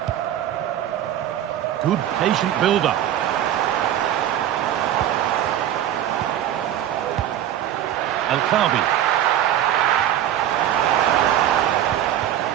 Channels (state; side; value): quieter; left; 11.3 dB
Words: Good patient build-up. El Khabi.